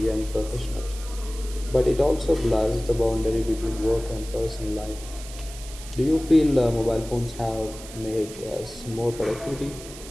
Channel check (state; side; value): noise; right; hiss, 15 dB below the sound